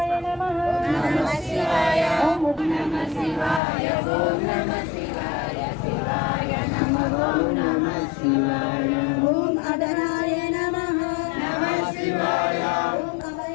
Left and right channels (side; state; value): right; drops out; at 3.6 s